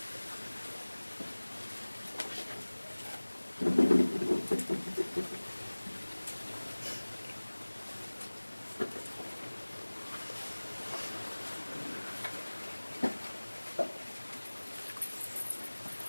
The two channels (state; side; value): inverted; both; correlation -1.00